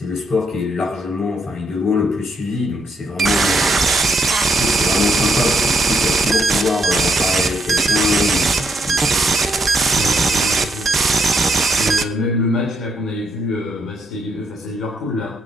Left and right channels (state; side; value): normal; both; correlation 0.75